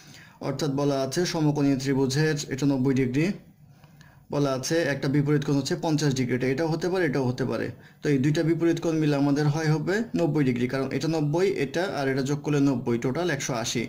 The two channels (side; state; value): both; identical; correlation 1.00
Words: অর্থাৎ বলা আছে সমকোণী ত্রিভুজের এটা 90 ডিগ্রি, বলা আছে একটা বিপরীত কোণ হচ্ছে 50 ডিগ্রি। এটাও হতে পারে, এটাও হতে পারে। তো এই দুইটা বিপরীত কোণ মিলে আমাদের হবে 90 ডিগ্রি, কারণ এটা 90, এটা আর এটা যোগ করলে 90, টোটাল 180।